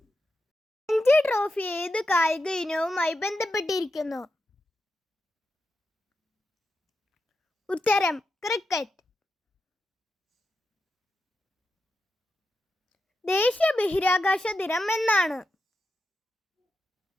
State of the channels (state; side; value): normal; both; correlation 0.88